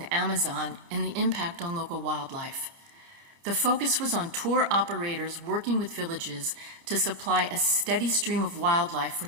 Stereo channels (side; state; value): left; late; 30 ms